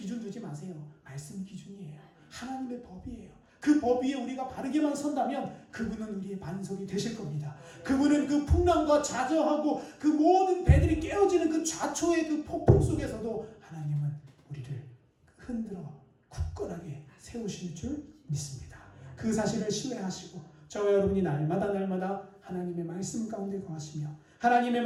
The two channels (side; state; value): both; identical; correlation 1.00